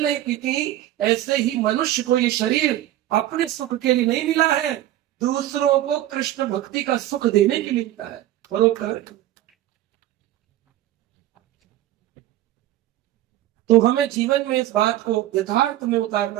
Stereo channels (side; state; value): left; quieter; 13.9 dB